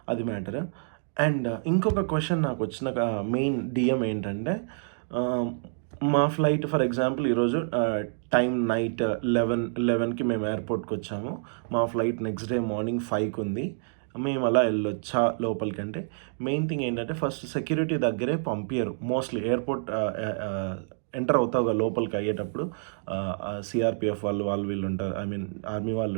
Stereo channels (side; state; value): left; silent; digital silence